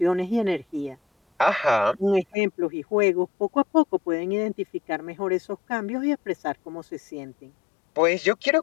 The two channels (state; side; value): drops out; right; at 2.4 s